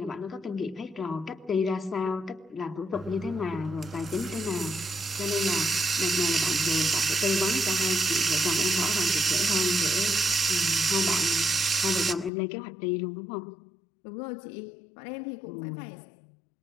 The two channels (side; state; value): right; drops out; at 12.3 s